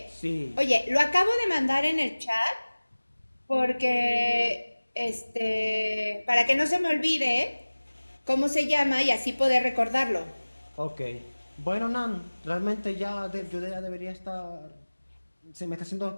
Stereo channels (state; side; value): inverted; both; correlation -1.00